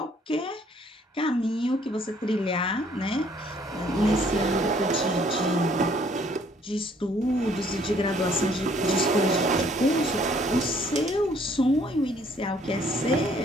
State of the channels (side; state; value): both; normal; correlation 0.62